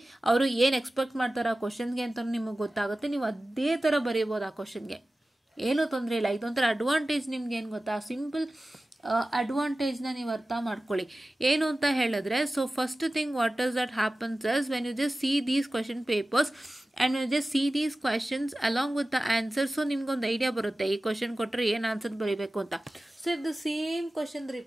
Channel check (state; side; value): normal; both; correlation 0.96